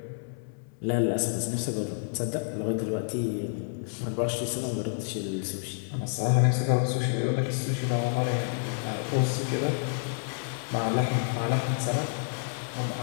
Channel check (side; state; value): right; silent; 58 dB below the other